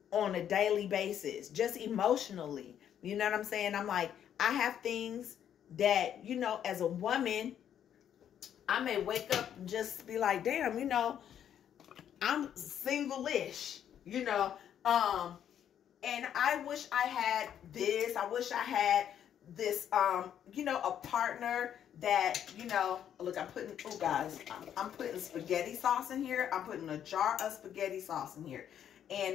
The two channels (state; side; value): quieter; right; 9.6 dB